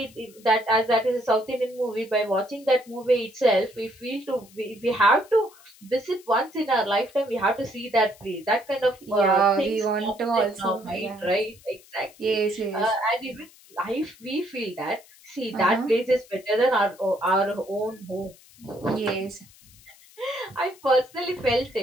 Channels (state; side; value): noise; left; hiss, 25 dB below the sound